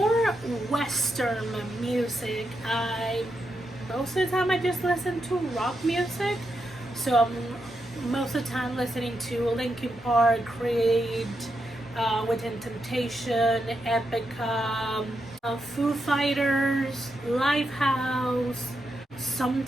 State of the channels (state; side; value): normal; both; correlation 0.84